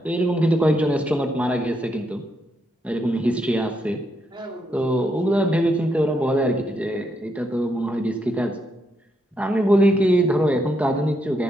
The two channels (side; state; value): both; normal; correlation 0.78